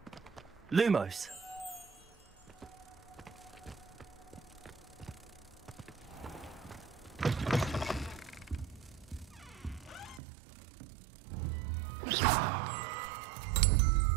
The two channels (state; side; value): drops out; left; at 10.2 s